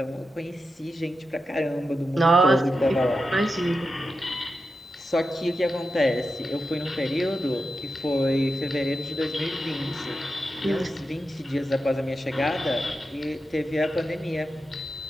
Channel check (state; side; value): normal; both; correlation 0.90